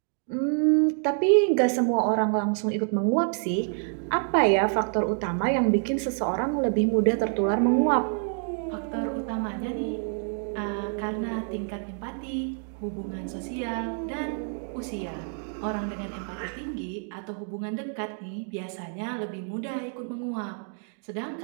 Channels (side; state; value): left; silent; 56 dB below the other